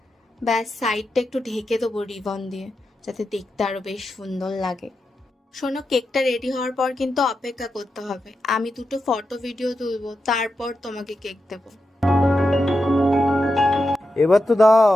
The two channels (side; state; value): both; normal; correlation 0.88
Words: ব্যাস, সাইডটা একটু ঢেকে দেবো রিবন দিয়ে যাতে দেখতে আরো বেশ সুন্দর লাগে। শোনো, কেকটা রেডি হওয়ার পর কিন্তু অপেক্ষা করতে হবে। আমি দুটো ফটো ভিডিও তুলবো, তারপর তোমাকে কেক দেবো। এবার তো